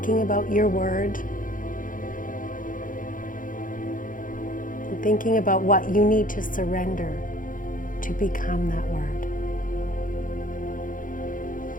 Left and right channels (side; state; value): right; late; 0.39 ms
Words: about your word, and thinking about what you need to surrender to become that word.